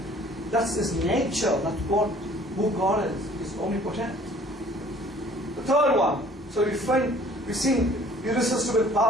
that's his nature. That's who God is. He's omnipotent. The third one. So we've seen irresistible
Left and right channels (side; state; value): both; normal; correlation 0.54